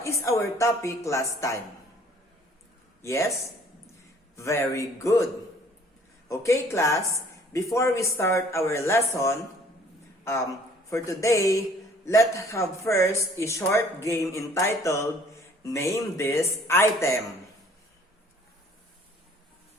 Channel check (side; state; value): both; normal; correlation 0.56